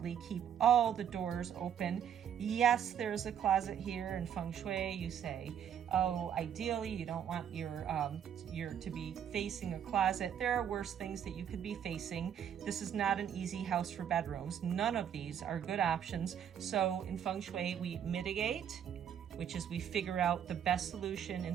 keep all the doors open. Yes, there's a closet here in Feng Shui. You say, oh, ideally you don't want your to be facing a closet. There are worse things that you could be facing. This is not an easy house for bedrooms. None of these are good options. So in Feng Shui, we mitigate, which is we figure out the best solution in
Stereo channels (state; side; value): quieter; left; 9.0 dB